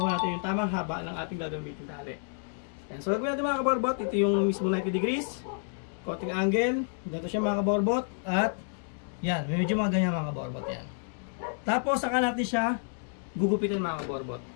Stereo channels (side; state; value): right; silent; 58 dB below the other